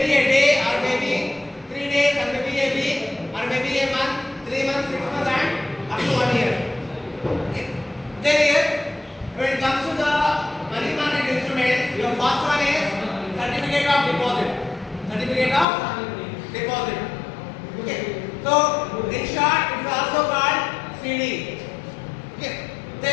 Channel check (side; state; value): right; drops out; at 15.7 s